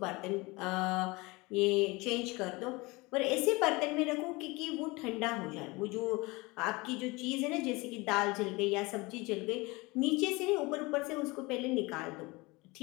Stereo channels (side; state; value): right; quieter; 24.0 dB